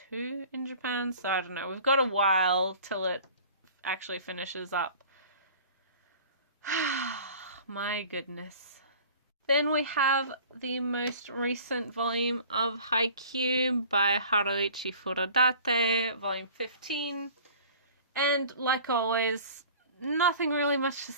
in Japan, so I don't know. We've got a while till it actually finishes up. My goodness. Then we have the most recent volume of Haikyuu by Haruichi Furodate, volume 15. And like always, nothing really much to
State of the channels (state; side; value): inverted; both; correlation -0.46